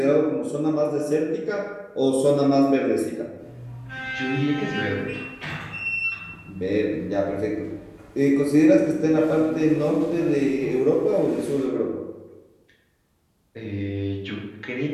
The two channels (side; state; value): both; identical; correlation 1.00